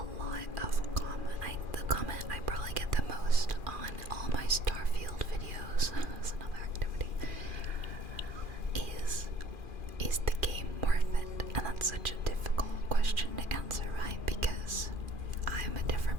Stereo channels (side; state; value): left; late; 2.4 ms